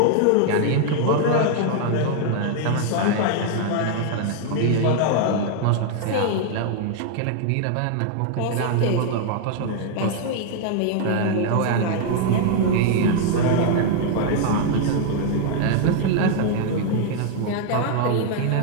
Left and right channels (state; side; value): different; both; correlation 0.00